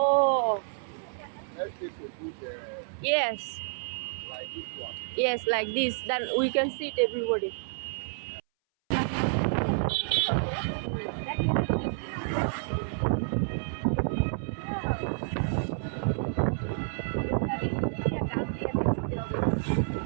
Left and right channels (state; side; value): silent; left; 58 dB below the other